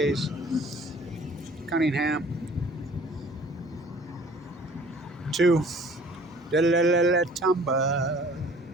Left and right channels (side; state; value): both; normal; correlation 0.52